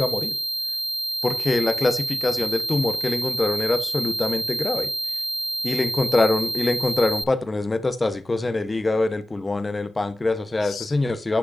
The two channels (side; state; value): both; normal; correlation 0.96